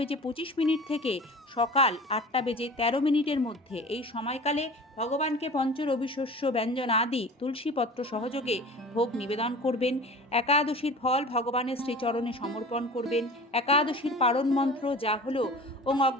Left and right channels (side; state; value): both; normal; correlation 0.39